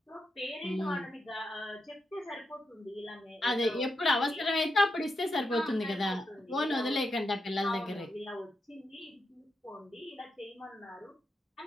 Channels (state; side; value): normal; both; correlation 0.85